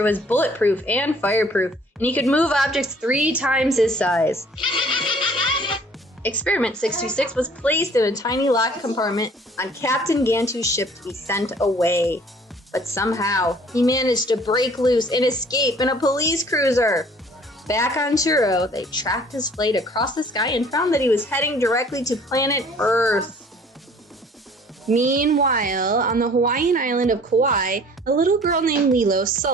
was bulletproof and fireproof, and he could move objects 3 times his size. Experiment 626 was placed in a tiny locked compartment on Captain Gantu's ship to be sent away. But somehow, he managed to break loose and escape in a police cruiser. Back on Churro, they tracked his flight across the sky and found that he was heading directly to planet Earth. Meanwhile, on the Hawaiian island of Kauai, a little girl named Lilo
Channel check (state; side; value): normal; both; correlation 0.54